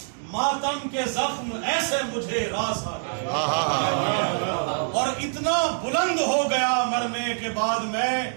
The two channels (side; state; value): left; silent; digital silence